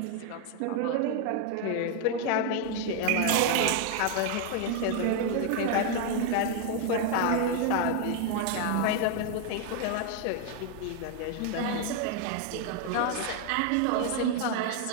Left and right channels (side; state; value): both; different; correlation 0.00